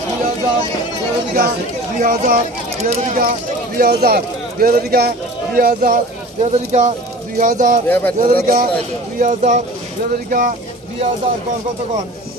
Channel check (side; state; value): both; normal; correlation 0.41